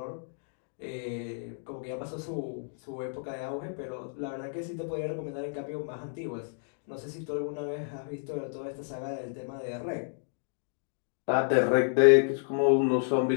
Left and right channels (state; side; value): silent; right; digital silence